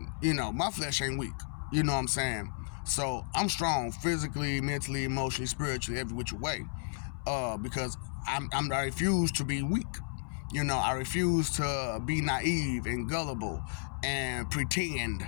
you know, my flesh ain't weak. You know what I'm saying? So I'm strong physically, mentally, emotionally, spiritually, every which way. Because I refuse to be weak. You know, I refuse to be naive and gullible and pretend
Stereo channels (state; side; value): silent; right; 56 dB below the other